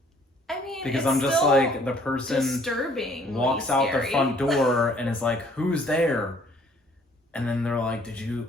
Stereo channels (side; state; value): both; normal; correlation 0.59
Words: I mean, Because it's I'm just still like, the person disturbing, walks out the front door and is like, who's there? And then they're like, did you